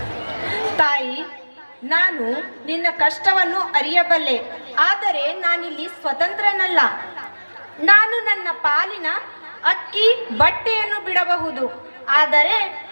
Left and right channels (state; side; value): inverted; both; correlation -1.00